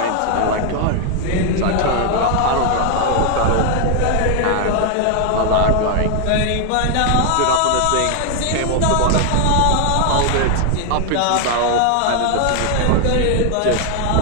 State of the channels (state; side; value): different; both; correlation 0.00